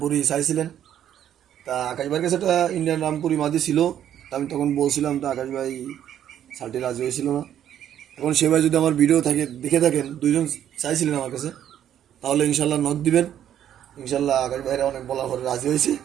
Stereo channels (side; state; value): left; quieter; 10.4 dB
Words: চাইছিলেন। তা আকাশ ভাইয়ের কাছে একটা ইন্ডিয়ান রামপুরি মাদি ছিল। তা আমি তখন বলছিলাম, তো আকাশ ভাই শালটি রাজি হয়েছিল না। এখন সে ভাই যদি আমার ভিডিও থাকে দেখে থাকেন, দুইজন চাইছিলেন আমার কাছে, তাহলে ইনশাল্লাহ নক দিবেন। ইনশাল্লাহ আকাশ ভাইরা অনেক বলার পরে রাজি হয়েছে।